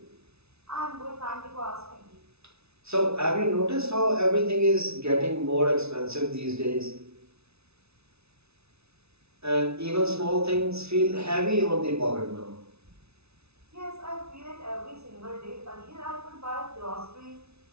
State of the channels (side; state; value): left; late; 0.80 ms